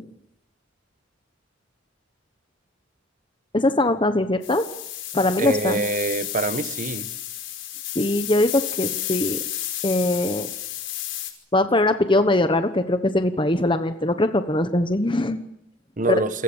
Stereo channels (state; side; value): normal; both; correlation 0.51